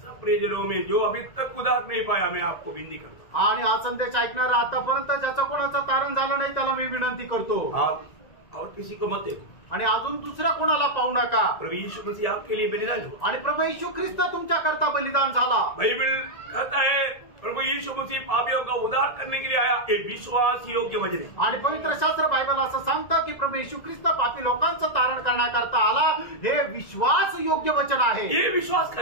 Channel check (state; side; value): late; right; 1.9 ms